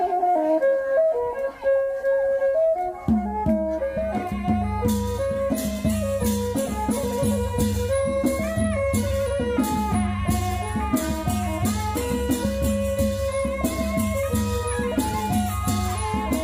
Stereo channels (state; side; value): identical; both; correlation 1.00